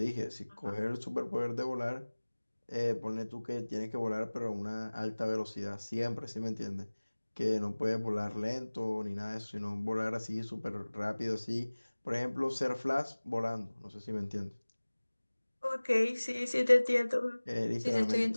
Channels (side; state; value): both; inverted; correlation -1.00